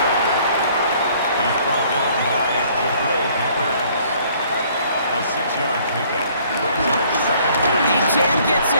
He's brought down by Peppers. A 6-yard pickup. Brings up 2nd down. Chan gets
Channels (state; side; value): inverted; both; correlation -0.59